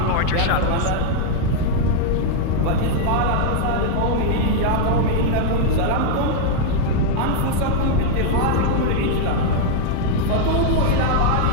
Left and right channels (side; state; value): both; different; correlation 0.00